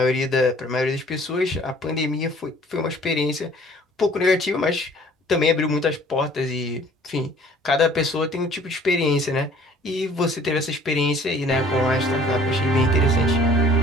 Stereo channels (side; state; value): both; normal; correlation 0.54